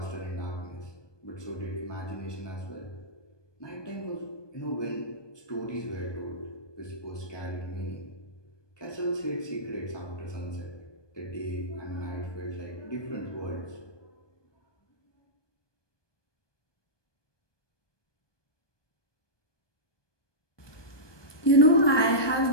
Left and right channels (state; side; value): late; right; 1.2 ms